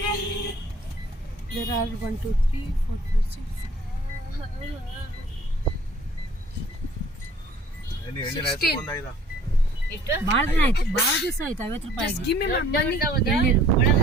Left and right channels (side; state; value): both; normal; correlation 0.54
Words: There are 1, 2, 3, 4, 5, 6. ಭಾಳ ದಿನ ಆಯ್ತು, ಭಾಳ ದಿವಸ ಆಯ್ತು. 50 ರೂಪಾಯಿ. Just give me my money.